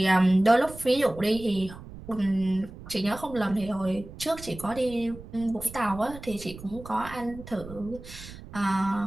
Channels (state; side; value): noise; right; rumble, 15 dB below the sound